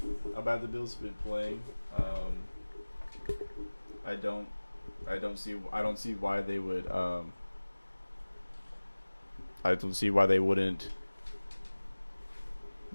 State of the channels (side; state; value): both; inverted; correlation -1.00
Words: How bad the Bills have been playing. I don't see why they would. I don't see why they wouldn't